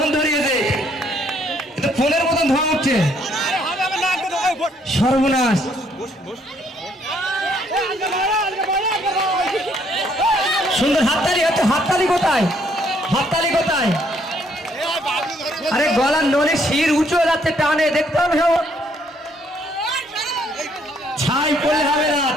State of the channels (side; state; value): both; normal; correlation 0.68